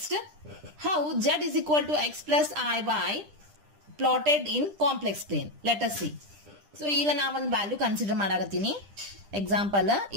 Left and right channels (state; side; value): late; left; 10 ms